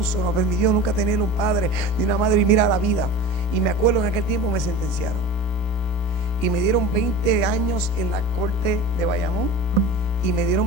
No permitió nunca tener un padre ni una madre, y mira la vida. Y me acuerdo en aquel tiempo me sentenciaron y me dieron 20 años en la corte de Bayamón y me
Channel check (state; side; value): late; right; 33 ms